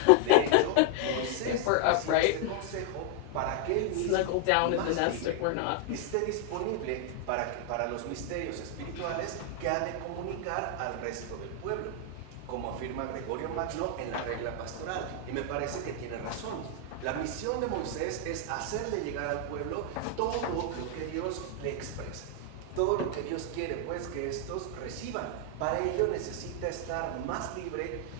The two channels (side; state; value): both; different; correlation 0.00